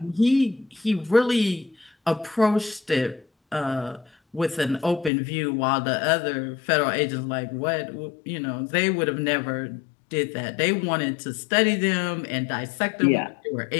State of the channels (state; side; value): drops out; right; at 5.1 s